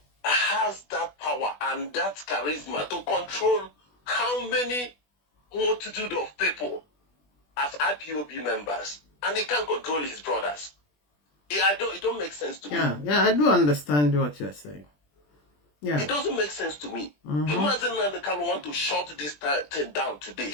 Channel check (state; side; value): late; right; 20 ms